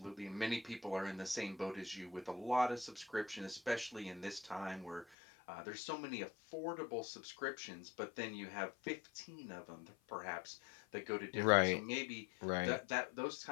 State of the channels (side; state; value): right; drops out; at 5.2 s